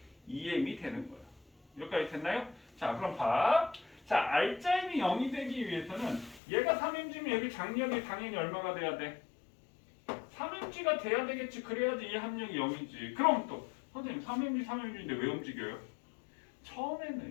EM이 되는 거야. 여기까지 됐나요? 자, 그럼 봐. 자, R자임이 0이 되기 위해서는 얘가 3mg면 여기 장력이 당연히 얼마가 돼야 돼? 3mg가 돼야 되겠지. 그래야지 이 합력이 0이지. 그럼 또 선생님 3mg인데 왜 움직여요?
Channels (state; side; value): drops out; right; at 6.4 s